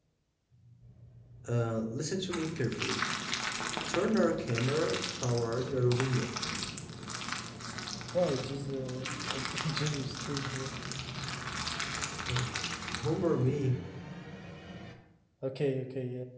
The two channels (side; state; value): both; identical; correlation 1.00